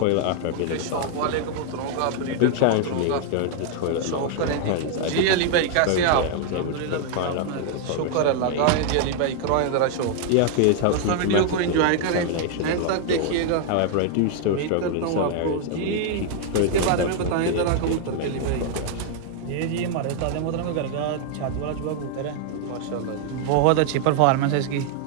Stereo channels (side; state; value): both; different; correlation 0.00